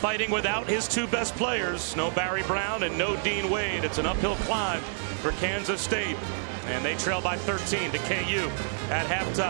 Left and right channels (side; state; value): left; silent; 59 dB below the other